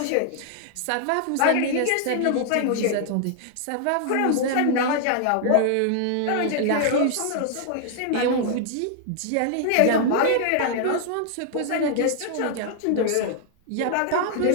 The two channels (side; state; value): both; different; correlation 0.00